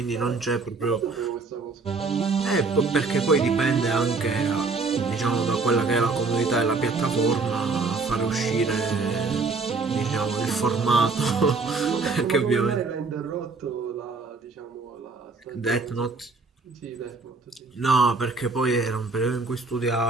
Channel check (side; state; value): left; quieter; 4.0 dB